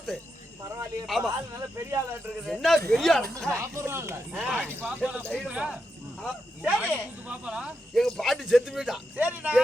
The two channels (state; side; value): normal; both; correlation 0.85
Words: பரவாயில்லையே ஆமா. பால் நல்ல பெரிய ஆளா இருக்குது. என்ன பெரிய ஆளு? சரி எங்க பாட்டி செத்து போயிட்டான் சரிண்ணா